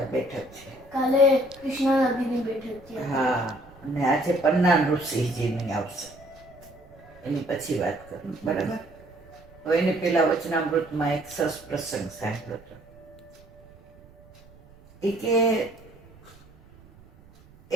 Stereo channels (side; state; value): right; noise; rumble, 25 dB below the sound